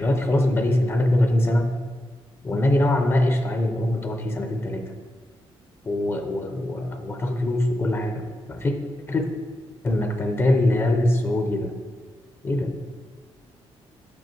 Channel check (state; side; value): normal; both; correlation 0.88